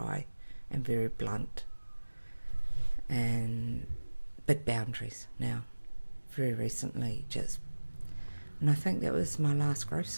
and very blunt and big boundaries now. Very recently, and I think that was my last growth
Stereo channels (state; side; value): inverted; both; correlation -1.00